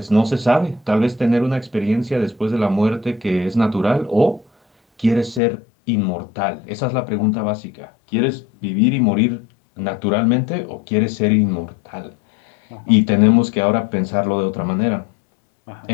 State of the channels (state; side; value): drops out; right; at 5.4 s